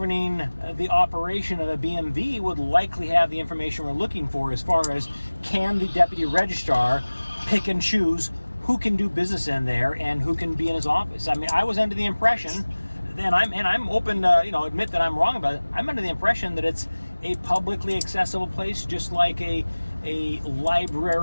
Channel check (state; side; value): inverted; both; correlation -1.00